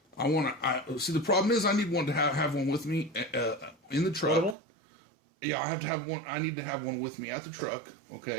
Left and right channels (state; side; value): drops out; left; at 4.5 s